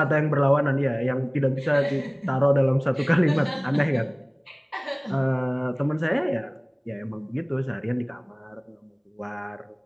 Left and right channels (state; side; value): identical; both; correlation 1.00